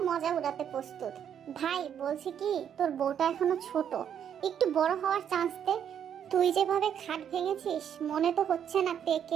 মজা উড়াতে প্রস্তুত। ভাই বলছি কি, তোর বউটা এখনো ছোট, একটু বড় হওয়ার চান্স দে। তুই যেভাবে খাট ভেঙেছিস, মনে তো হচ্ছে না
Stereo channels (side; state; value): left; quieter; 8.8 dB